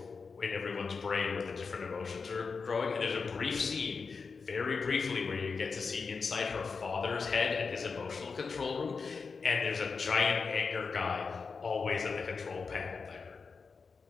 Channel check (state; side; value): quieter; right; 5.0 dB